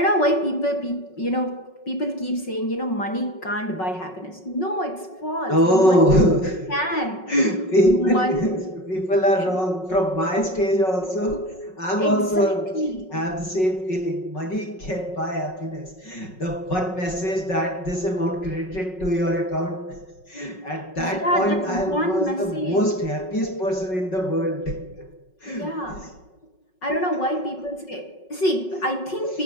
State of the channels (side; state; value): right; late; 5.4 ms